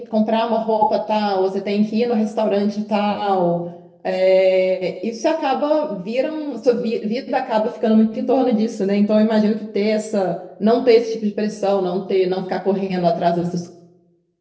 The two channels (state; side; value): identical; both; correlation 1.00